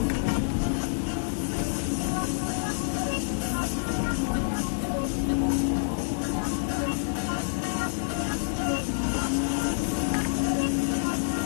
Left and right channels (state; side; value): silent; right; 60 dB below the other